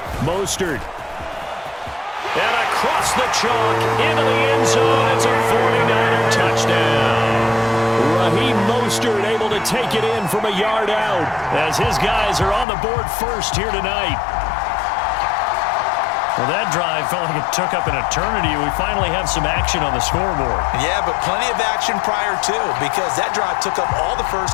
Mostert. And across the chalk into the end zone. It's a 49er touchdown. Raheem Mostert able to take it in from a yard out as his guys are on the board first here tonight. Well, that drive felt like it took up an eternity. We finally have some action on the scoreboard. Yeah, but plenty of action prior to, because that drive took up all the first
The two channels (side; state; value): right; drops out; at 12.7 s